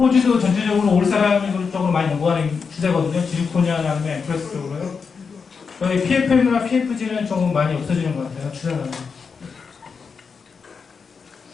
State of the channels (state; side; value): quieter; right; 5.5 dB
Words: 전체적으로 올사라니 쪽으로 많이 연구하는 추세거든요. 지르코니아 아니면 앰프레스 쪽으로요. 저희 PFM이나 PFG는 조금 많이 없어지는 것 같아요. 추세가.